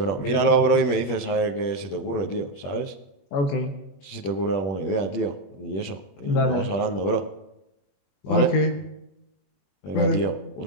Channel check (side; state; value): right; late; 21 ms